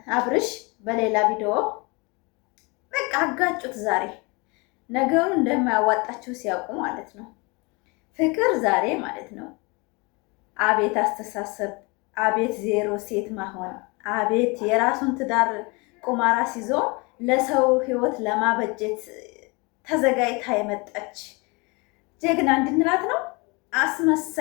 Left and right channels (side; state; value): right; quieter; 28.0 dB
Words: አብርሽ በሌላ ቪዲዮ በቃ አጋጩት። ዛሬ ነገሩ እንደማያዋጣቸው ሲያውቁ ማለት ነው። ፍቅር ዛሬ ማለት ነው አቤት አስተሳሰብ፣ አቤት ዜሮ ሴት መሆን፣ አቤት የራሱን ትዳር ቁማራ ሲዞ ለሰው ህይወት ለማበጀት ተዘጋጅታ የመጣች ጀግና እንድንላት ነው።